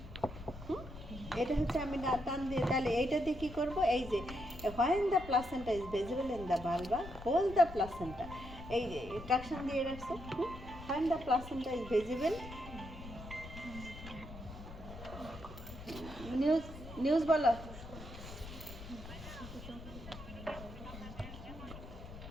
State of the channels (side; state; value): left; noise; rumble, 13 dB below the sound